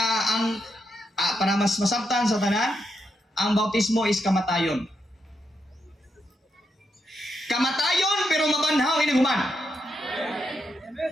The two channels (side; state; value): both; normal; correlation 0.83